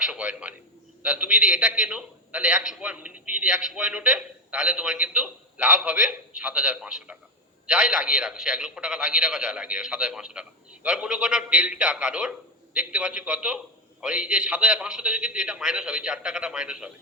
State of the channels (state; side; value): normal; both; correlation 0.11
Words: পয়েন্ট মানে। তাহলে তুমি যদি এটা কেনো তাহলে 100 পয়েন্ট, যদি 100 পয়েন্ট ওঠে তাহলে তোমার কিন্তু লাভ হবে 7,500 টাকা। যাই লাগিয়ে রাখো, সে 1 লক্ষ টাকা লাগিয়ে রাখো, যাই লাগিয়ে রাখো 7,500 টাকা। এবার মনে করো ডেল্টা কারোর দেখতে পাচ্ছি কত, আর এই যে 7,500 থেকে কিন্তু এটা মাইনাস হবে, 4 টাকাটা মাইনাস হবে।